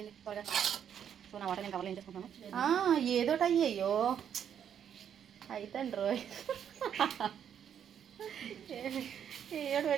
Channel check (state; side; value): quieter; left; 8.8 dB